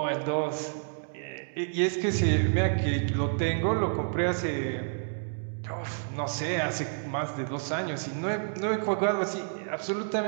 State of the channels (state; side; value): silent; left; digital silence